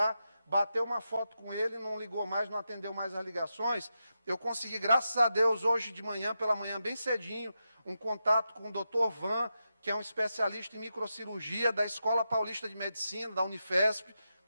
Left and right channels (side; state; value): both; inverted; correlation -0.88